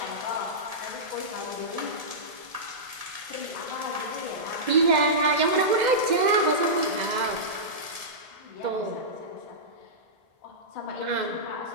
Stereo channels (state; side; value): late; left; 1.7 ms